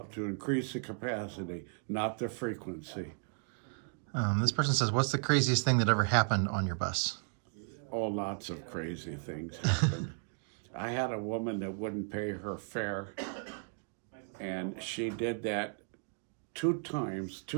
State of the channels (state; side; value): silent; left; 55 dB below the other